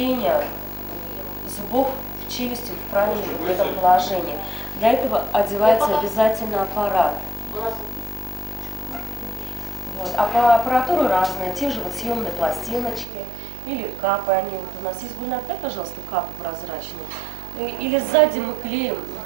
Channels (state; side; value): drops out; left; at 13.1 s